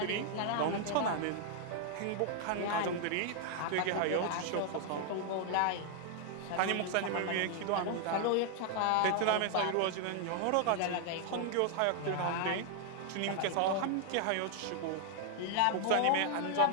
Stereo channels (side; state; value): both; different; correlation 0.00